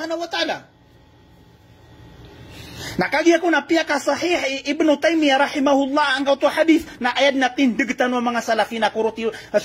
wa ta'ala. Nakagi ako na piya ka sahih Ibn Taymiyah rahimahullah ang kauto hadith na ayad na tindigtan ng mga salafi na kuruti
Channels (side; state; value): both; identical; correlation 1.00